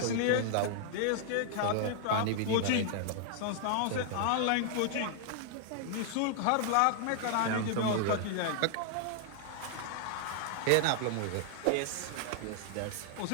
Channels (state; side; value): different; both; correlation 0.00